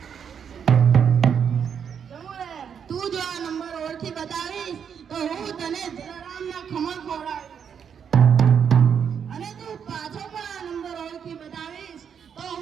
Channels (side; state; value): left; quieter; 7.5 dB